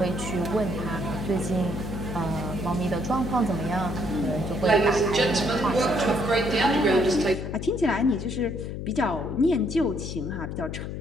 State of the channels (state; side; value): noise; left; hum, 6 dB below the sound